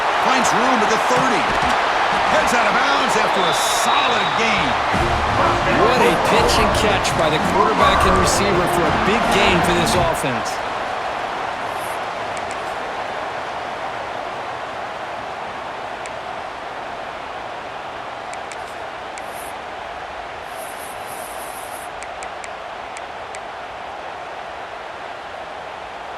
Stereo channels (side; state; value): both; identical; correlation 1.00